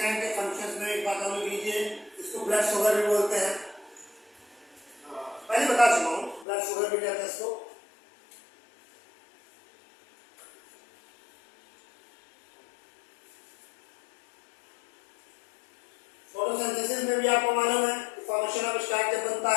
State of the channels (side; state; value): right; drops out; at 6.5 s